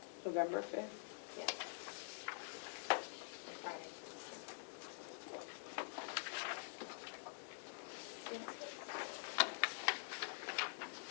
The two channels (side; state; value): right; silent; digital silence